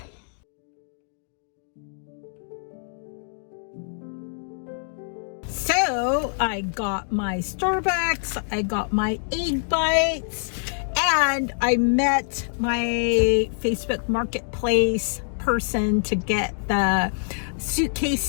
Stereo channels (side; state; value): right; silent; digital silence